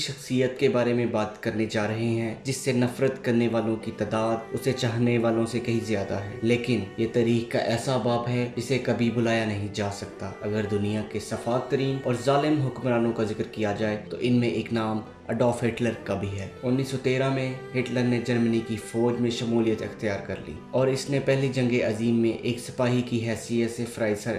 کے بارے میں بات کرنے جا رہے ہیں جس سے نفرت کرنے والوں کی تعداد اسے چاہنے والوں سے کہیں زیادہ ہے، لیکن یہ تاریخ کا ایسا باب ہے جسے کبھی بلایا نہیں جا سکتا۔ اگر دنیا کے سفاک ترین اور ظالم حکمرانوں کا ذکر کیا جائے تو ان میں ایک نام اڈولف ہٹلر کا بھی ہے۔ 1913 میں ہٹلر نے جرمنی کی فوج میں شمولیت اختیار کر لی اور اس نے پہلی جنگ عظیم میں ایک سپاہی کی حیثیت سے فرائض سر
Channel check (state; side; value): identical; both; correlation 1.00